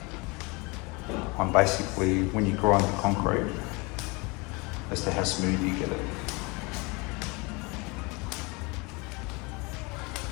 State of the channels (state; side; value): quieter; right; 27.5 dB